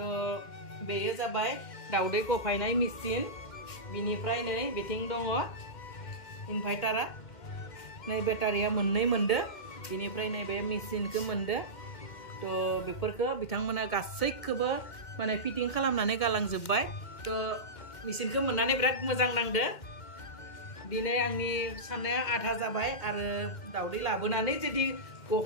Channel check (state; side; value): late; right; 2.1 ms